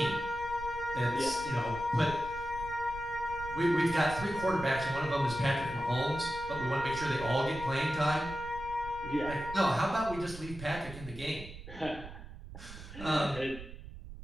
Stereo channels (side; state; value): right; noise; rumble, 13 dB below the sound